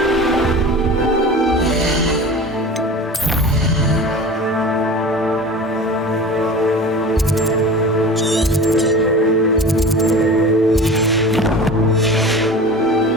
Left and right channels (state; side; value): normal; both; correlation 0.36